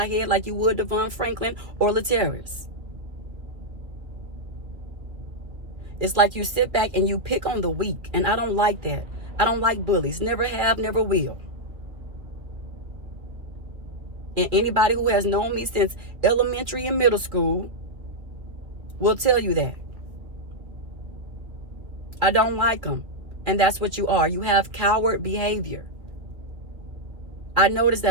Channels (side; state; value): left; late; 2.2 ms